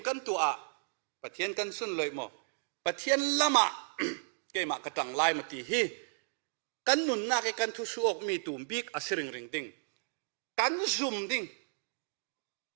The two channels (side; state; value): left; silent; digital silence